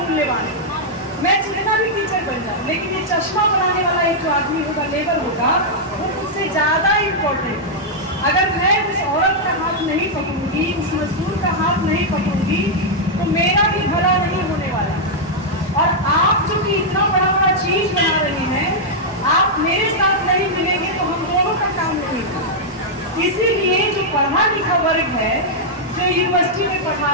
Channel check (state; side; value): normal; both; correlation -0.05